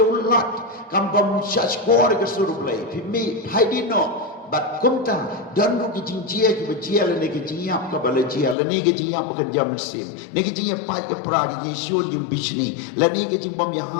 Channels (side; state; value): right; drops out; at 8.6 s